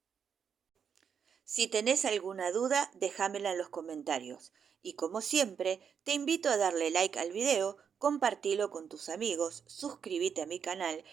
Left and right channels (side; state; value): left; quieter; 7.1 dB